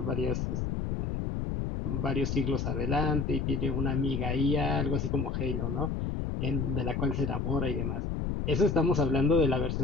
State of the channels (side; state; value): left; noise; rumble, 1 dB below the sound